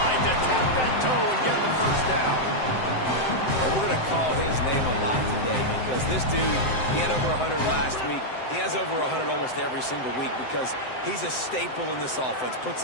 to tap that toe and get the first down. And we're going to call his name a lot today because this dude, he had over 100 last week. He has over 100 almost every single week because he's a staple in this offense. Puts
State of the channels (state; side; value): late; right; 7.8 ms